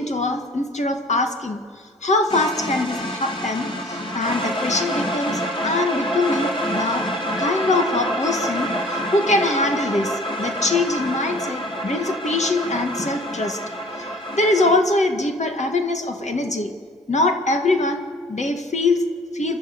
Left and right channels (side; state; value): both; normal; correlation 0.49